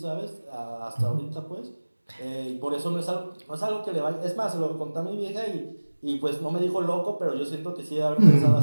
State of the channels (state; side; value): inverted; both; correlation -1.00